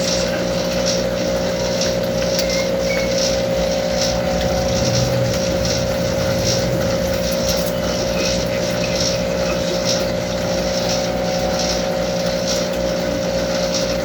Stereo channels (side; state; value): both; identical; correlation 1.00